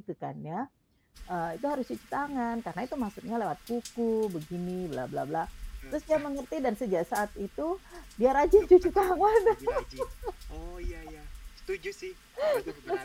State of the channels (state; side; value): identical; both; correlation 1.00